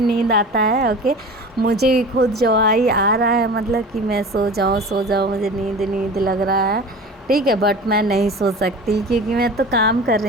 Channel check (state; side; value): normal; both; correlation 0.36